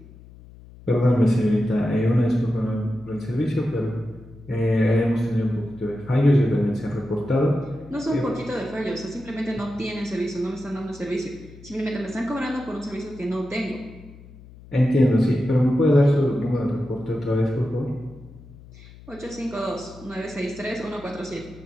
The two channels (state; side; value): noise; left; hum, 20 dB below the sound